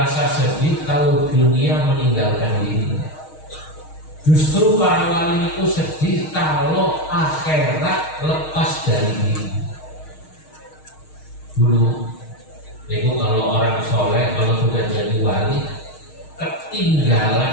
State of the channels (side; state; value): right; late; 6.4 ms